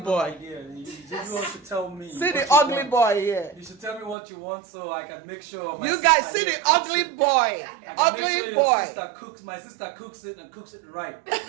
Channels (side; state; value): left; drops out; at 4.2 s